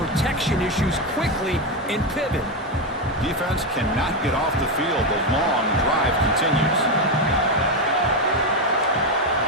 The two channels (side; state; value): both; normal; correlation 0.09